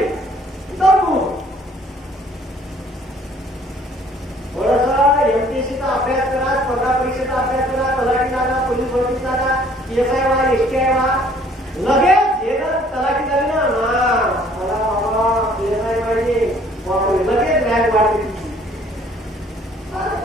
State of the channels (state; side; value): normal; both; correlation 0.58